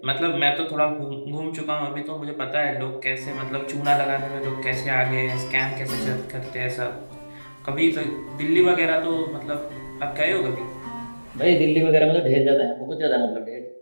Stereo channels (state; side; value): inverted; both; correlation -1.00